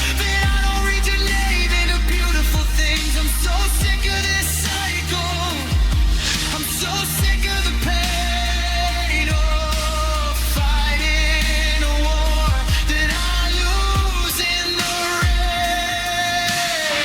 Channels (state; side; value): identical; both; correlation 1.00